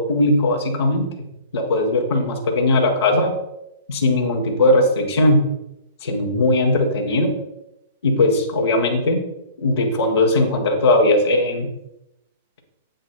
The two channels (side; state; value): both; inverted; correlation -0.48